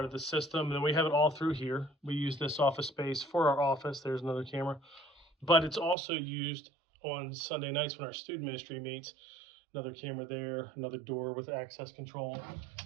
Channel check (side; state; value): left; drops out; at 6.0 s